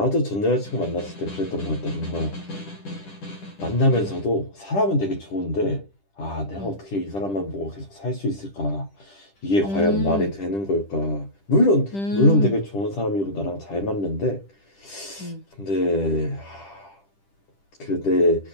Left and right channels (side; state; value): right; late; 10 ms